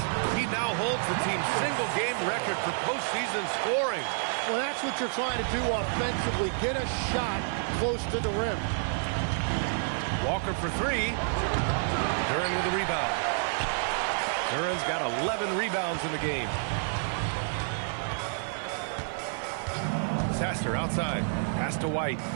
He now holds the team's single-game record for postseason scoring. Well, that's what you're trying to do offensively. Get a shot close to the rim. Walker for 3. Duren with the rebound. Duren's got 11 rebounds in the game. Sasser outside. Pass to White.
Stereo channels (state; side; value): silent; left; 58 dB below the other